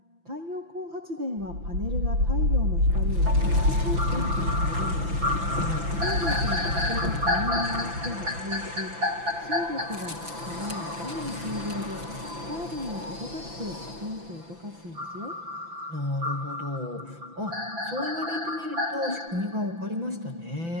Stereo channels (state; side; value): late; left; 6.0 ms